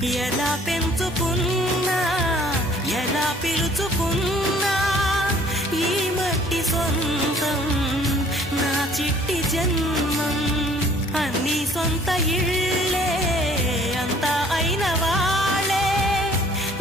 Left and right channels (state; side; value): normal; both; correlation 0.56